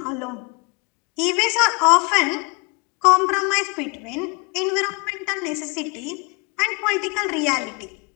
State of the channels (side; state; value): right; quieter; 30.2 dB